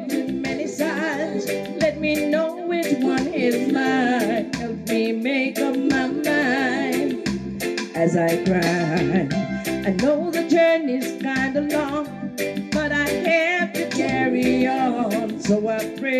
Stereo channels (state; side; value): identical; both; correlation 1.00